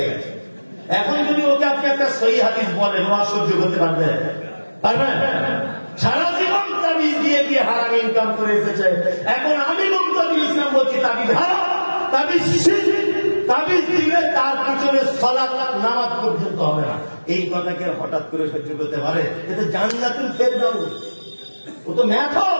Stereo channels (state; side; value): inverted; both; correlation -1.00